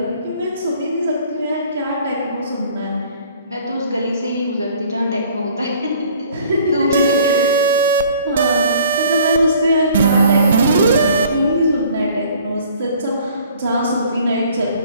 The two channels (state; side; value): inverted; both; correlation -0.55